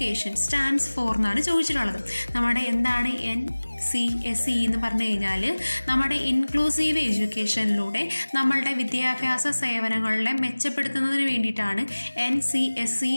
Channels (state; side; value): inverted; both; correlation -1.00